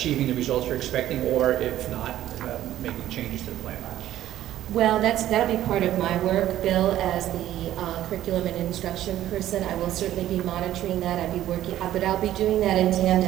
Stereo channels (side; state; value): left; quieter; 13.0 dB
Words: the results you're expecting, or if not, making changes to the plan? Well, that'll be part of my work, Bill, as the curriculum and instruction person. I will certainly be monitoring that. I'll be working, but I'll be doing that in